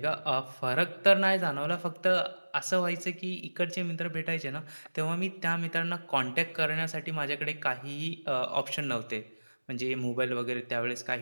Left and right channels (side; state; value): both; inverted; correlation -1.00